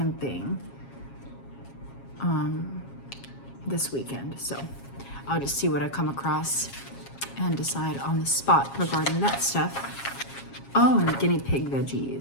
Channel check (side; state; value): right; late; 7.4 ms